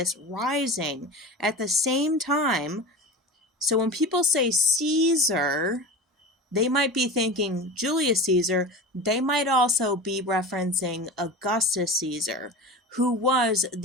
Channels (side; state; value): both; normal; correlation 0.30